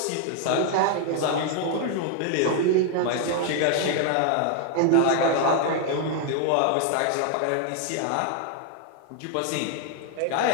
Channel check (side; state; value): both; different; correlation 0.00